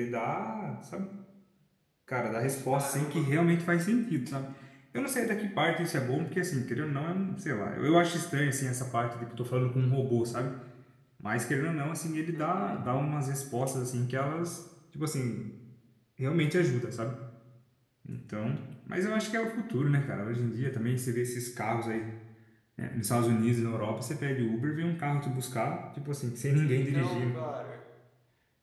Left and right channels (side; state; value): both; identical; correlation 1.00